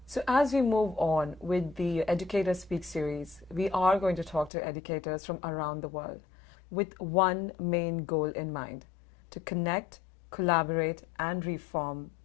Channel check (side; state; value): right; drops out; at 4.5 s